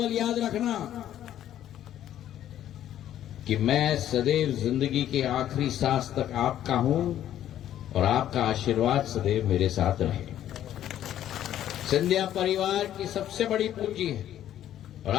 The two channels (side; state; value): right; quieter; 11.6 dB